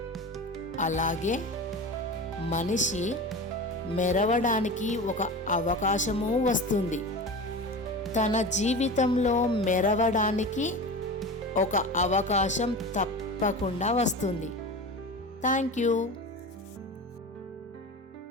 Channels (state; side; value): normal; both; correlation 0.30